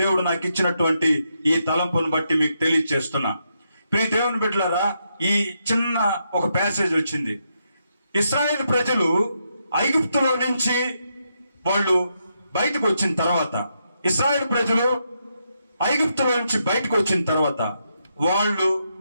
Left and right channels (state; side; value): inverted; both; correlation -0.81